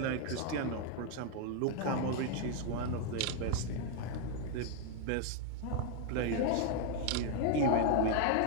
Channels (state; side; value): different; both; correlation 0.00